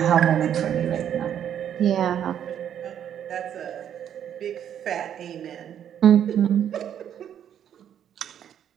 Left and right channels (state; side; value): quieter; left; 9.6 dB